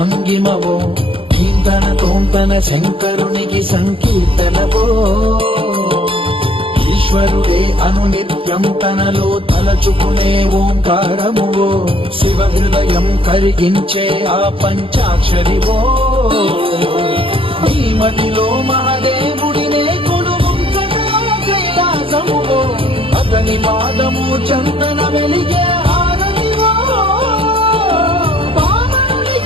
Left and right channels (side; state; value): left; late; 0.26 ms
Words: నీంతన తోంతన శంకరునికి సంకీర్తనవో ఈశ్వరుడే అనునిత్యం తనలో తలచుకునే ఓంకారమువో శివ హృదయం కరిగించే ఆ పంచాక్షరివో